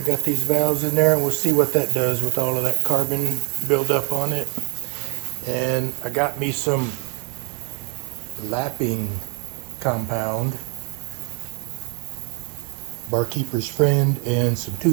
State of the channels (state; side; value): quieter; left; 36.3 dB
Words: got these valves in there, and we'll see what that does with all of that carbon buildup on it. And I got me some lapping compound, barkeeper's friend, and some